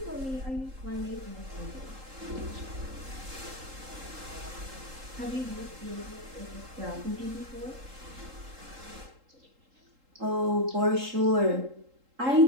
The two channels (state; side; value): late; left; 3.8 ms